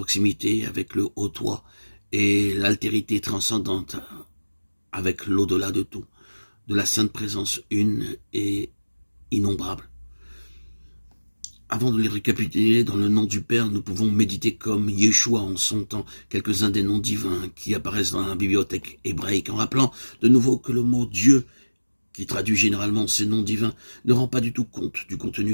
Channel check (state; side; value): inverted; both; correlation -1.00